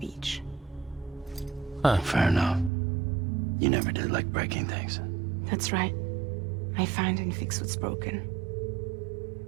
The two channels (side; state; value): left; drops out; at 2.7 s